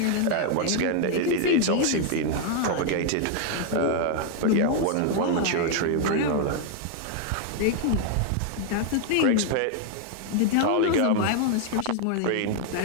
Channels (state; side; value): different; both; correlation 0.00